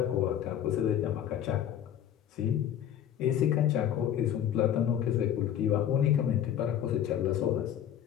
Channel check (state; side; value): quieter; right; 10.2 dB